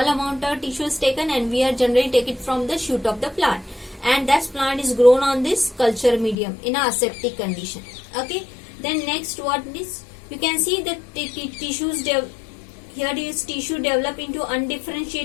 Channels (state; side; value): drops out; right; at 6.4 s